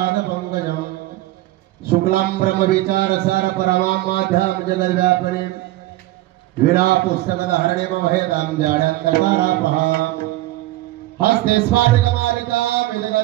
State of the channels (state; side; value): quieter; left; 16.9 dB